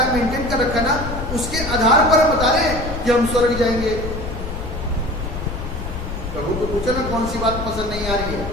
है, मेंटेन कर रखा ना, उसके आधार पर हम बता रहे हैं कि हम स्वर्ग जाएंगे। प्रभु को पूछो ना कौन सी बात पसंद नहीं आ रही है।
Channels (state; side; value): noise; left; rumble, 7 dB below the sound